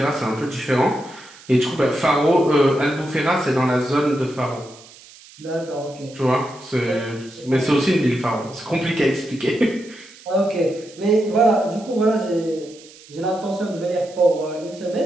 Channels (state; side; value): noise; right; hiss, 22 dB below the sound